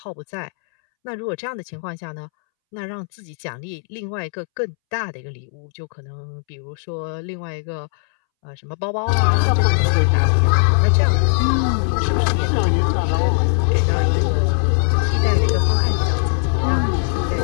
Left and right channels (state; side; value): silent; right; 65 dB below the other